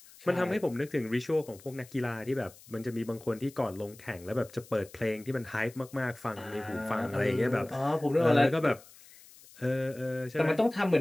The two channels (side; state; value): left; noise; hiss, 22 dB below the sound